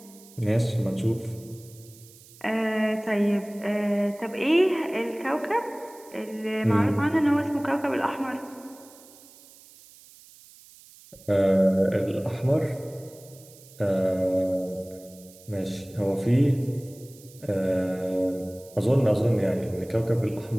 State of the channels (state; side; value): noise; right; hiss, 23 dB below the sound